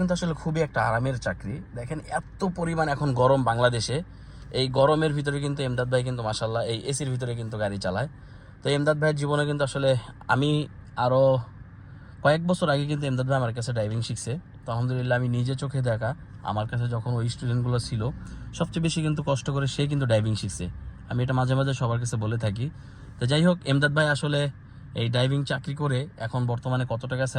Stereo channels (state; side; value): identical; both; correlation 1.00